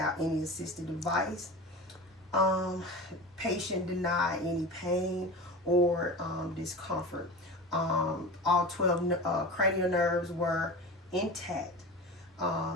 any assistive device. Patient denied any pain or discomfort. All 12 cranial nerves were intact.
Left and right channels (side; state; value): both; normal; correlation 0.31